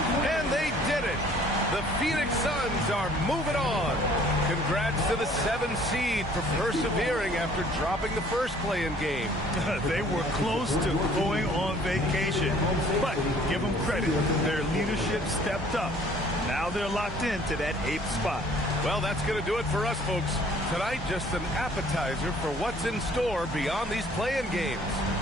And they did it. The Phoenix Suns are moving on. Congrats to the 7th seed for persevering after dropping the first play-in game. They were close to going on vacation, but give them credit. Their leadership stepped up. Now they're locked into that 8th spot. Well, that's going to do it for us, folks. Tonight, just an appetizer for what's in store beyond these play-in games.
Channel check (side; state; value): both; normal; correlation 0.56